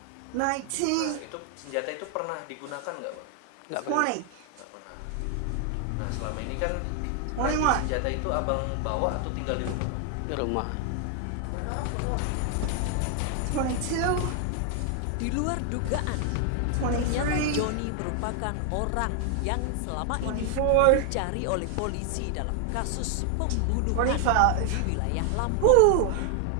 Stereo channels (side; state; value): both; different; correlation 0.00